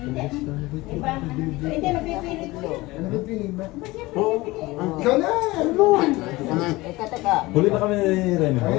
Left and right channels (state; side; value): quieter; right; 20.5 dB